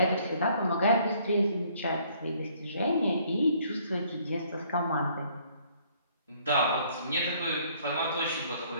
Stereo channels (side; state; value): both; inverted; correlation -0.62